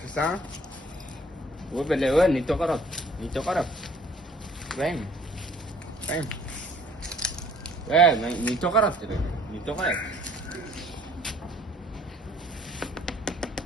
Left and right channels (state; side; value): normal; both; correlation 0.57